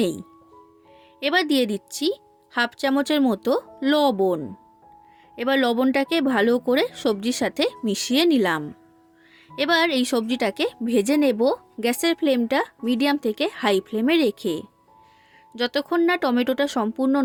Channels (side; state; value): both; identical; correlation 1.00